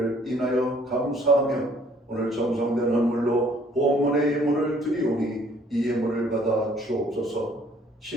인하여 감사하며 오늘 정성된 헌물로 본문의 예물을 드리오니 이 예물을 받아 주옵소서.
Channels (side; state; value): both; normal; correlation 0.60